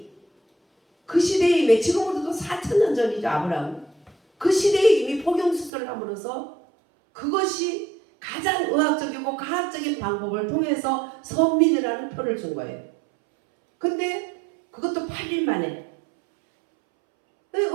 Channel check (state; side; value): drops out; left; at 5.7 s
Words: 그 시대에 이미, 지금으로도 4,000년 전이죠. 아브라함. 그 시대에 이미 포경수술을 함으로써 그것이 가장 의학적이고 과학적인 방법을 통해서 선민이라는 표를 준 거예요. 근데 그것도 8일 만에,